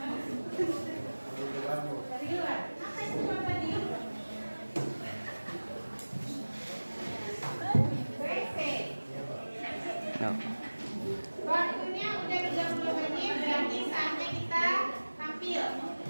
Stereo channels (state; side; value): inverted; both; correlation -1.00